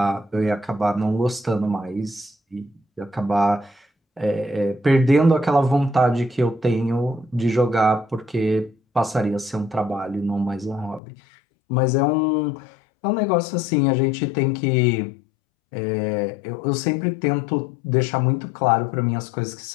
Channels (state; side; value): drops out; right; at 11.0 s